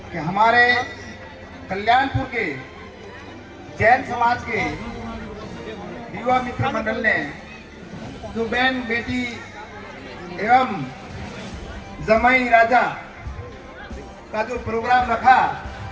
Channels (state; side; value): identical; both; correlation 1.00